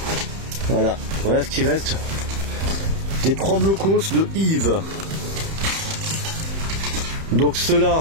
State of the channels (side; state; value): left; late; 31 ms